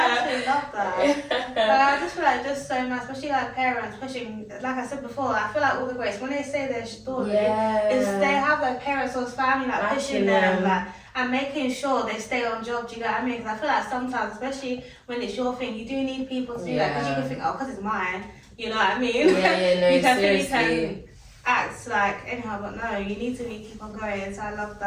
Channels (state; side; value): identical; both; correlation 1.00